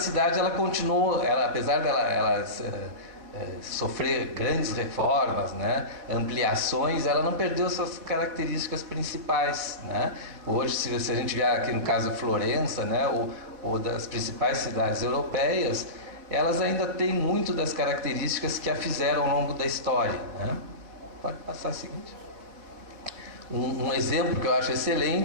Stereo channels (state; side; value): late; left; 4.3 ms